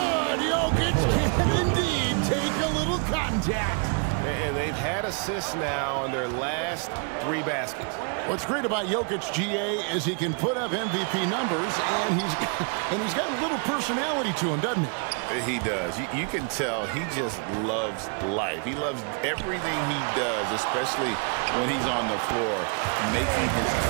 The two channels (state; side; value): quieter; left; 39.9 dB